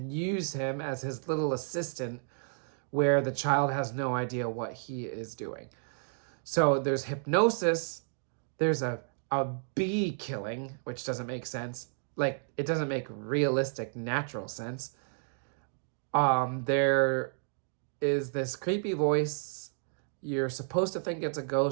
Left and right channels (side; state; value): left; silent; digital silence